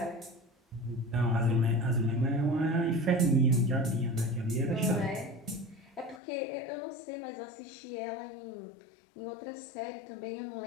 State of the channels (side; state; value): right; drops out; at 6.2 s